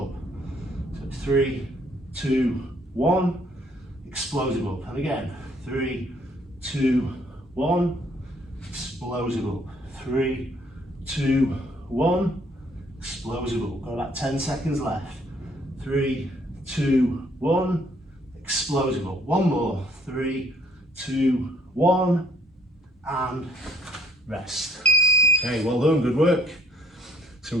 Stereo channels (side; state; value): both; normal; correlation 0.62